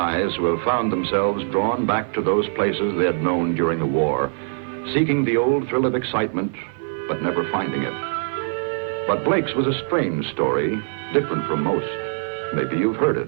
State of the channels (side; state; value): left; silent; 56 dB below the other